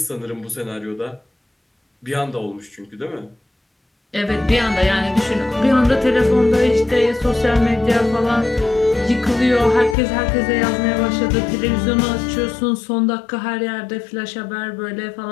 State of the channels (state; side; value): drops out; right; at 10.0 s